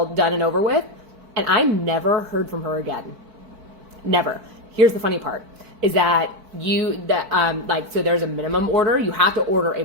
done and over with. And I never heard from her again. Never. Here's the funny part is that so there's a minimum order. You have to order a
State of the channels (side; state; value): left; late; 4.5 ms